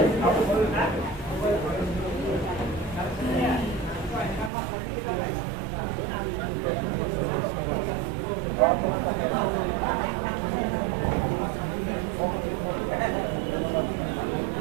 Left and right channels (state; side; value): drops out; left; at 4.5 s